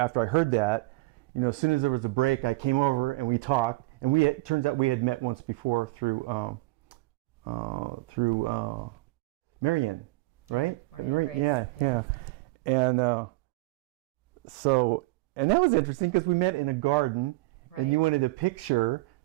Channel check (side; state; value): left; quieter; 22.2 dB